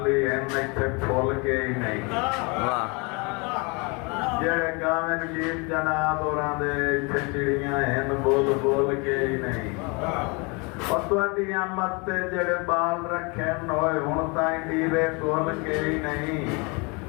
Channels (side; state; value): right; quieter; 30.1 dB